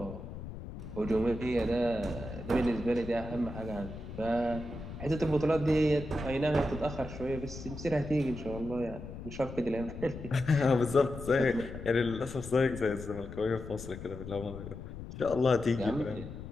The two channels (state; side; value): noise; left; rumble, 10 dB below the sound